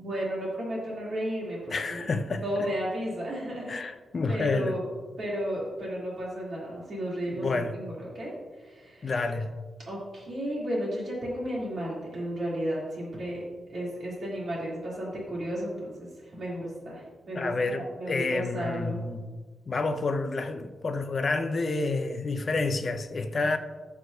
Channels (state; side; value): normal; both; correlation 0.85